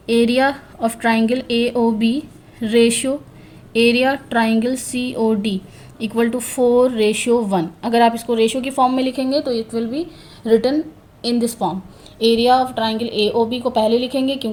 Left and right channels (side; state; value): both; identical; correlation 1.00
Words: Area of triangle AOB ratio area triangle COD equal to 4:1। अगर आप इसको रेशियो की फॉर्म में लिखेंगे तो it will be written in this form. Area of triangle AOB को पहले लिखेंगे